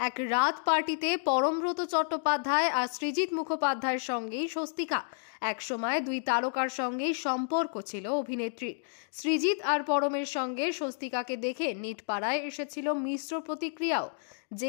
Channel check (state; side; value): silent; right; digital silence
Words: এক রাত পার্টিতে পরমব্রত চট্টোপাধ্যায় আর সৃজিত মুখোপাধ্যায়ের সঙ্গেই স্বস্তিকা। একসময় দুই তারকার সঙ্গেই সম্পর্ক ছিল অভিনেত্রীর। সৃজিত আর পরমের সঙ্গে স্বস্তিকাকে দেখে নিটপাড়ায় এসেছিল মিশ্র প্রতিক্রিয়াও,